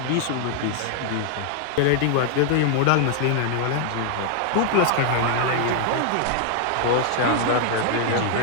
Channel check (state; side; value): different; both; correlation 0.00